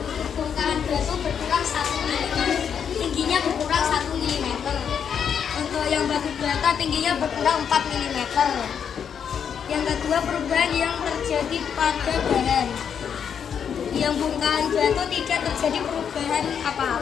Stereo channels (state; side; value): quieter; right; 7.7 dB